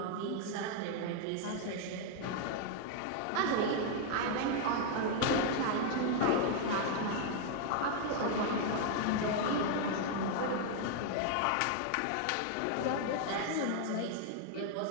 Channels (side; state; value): both; different; correlation 0.00